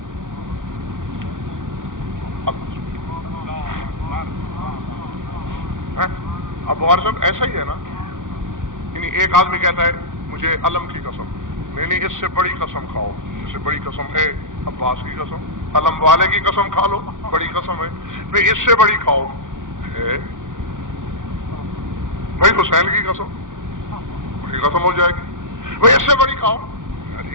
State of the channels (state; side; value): late; left; 0.88 ms